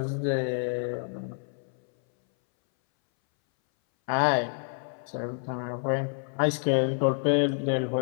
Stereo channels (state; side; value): silent; right; 59 dB below the other